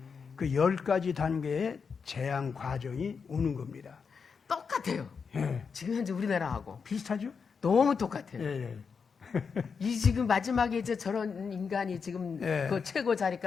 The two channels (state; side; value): quieter; right; 5.8 dB